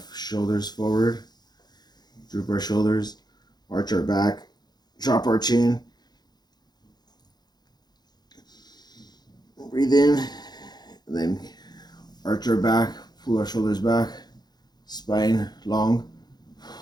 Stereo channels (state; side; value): late; right; 0.20 ms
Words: shoulders forward, droop our shoulders, arch our back, drop our chin. Breathe in, and then arch our back, pull our shoulders back, spine long.